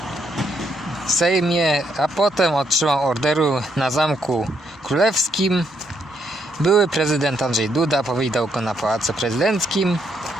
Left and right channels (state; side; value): normal; both; correlation 0.75